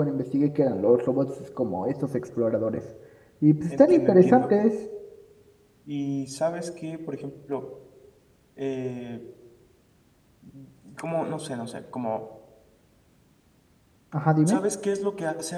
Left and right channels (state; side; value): identical; both; correlation 1.00